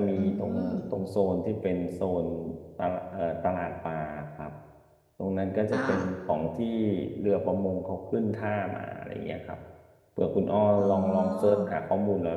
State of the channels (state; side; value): identical; both; correlation 1.00